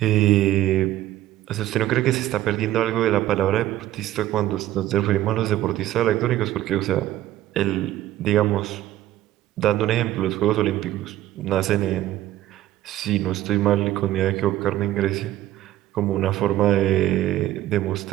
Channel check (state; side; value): quieter; left; 14.2 dB